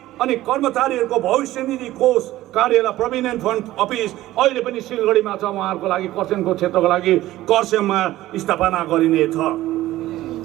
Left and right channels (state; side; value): quieter; left; 15.6 dB